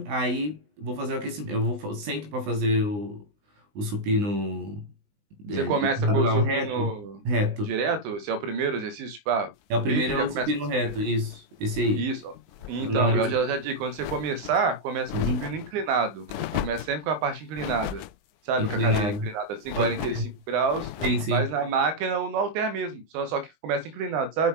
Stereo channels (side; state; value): left; late; 20 ms